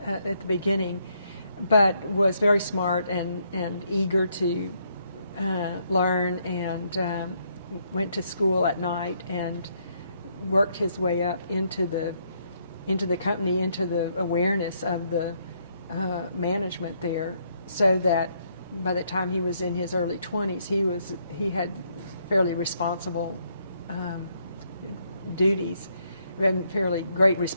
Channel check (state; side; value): inverted; both; correlation -0.73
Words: the beginning, but was very smart and eager to learn, and went to school at night and worked his way up into the company, into the awareness of the management there, so that by the time he was in his early 20s, he had fairly responsible duties, and fairly great